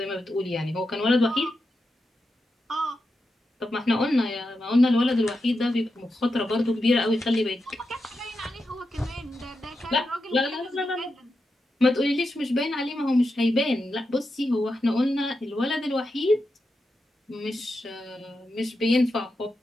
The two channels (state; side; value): normal; both; correlation 0.88